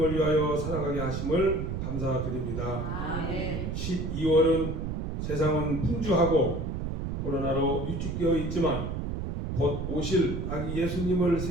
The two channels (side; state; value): right; noise; rumble, 3 dB below the sound